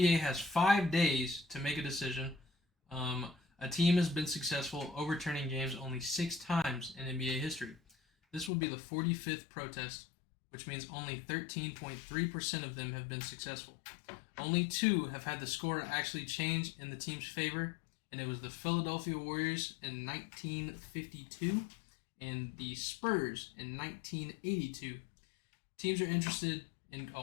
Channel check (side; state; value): right; drops out; at 8.5 s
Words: has 5 days to make a decision. A team has been successful overturning games only 6 times in NBA history. This will be the 45th protest, which means only 13.3% of them have been successful. Only 2 have had the score actually change in the team's favor, and it was the Philadelphia Warriors in 1952 and the Spurs in 1982. Teams are interested in.